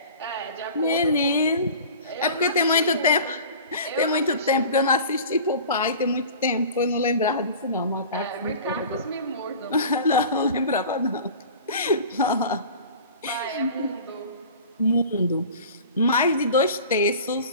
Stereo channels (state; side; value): inverted; both; correlation -0.40